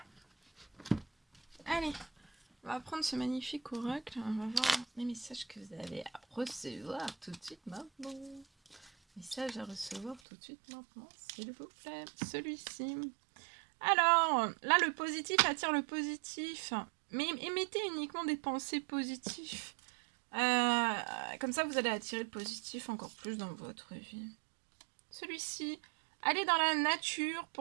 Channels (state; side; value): drops out; left; at 10.2 s